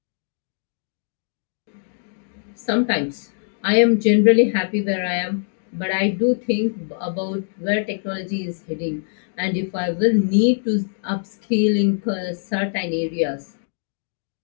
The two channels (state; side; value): silent; right; digital silence